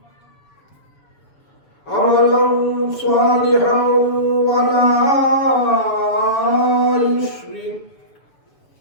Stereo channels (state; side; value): late; right; 7.0 ms